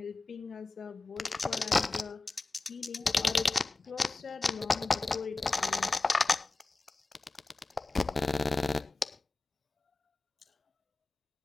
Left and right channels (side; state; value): right; quieter; 3.2 dB